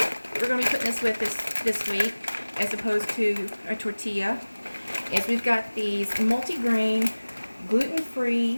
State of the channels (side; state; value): both; inverted; correlation -1.00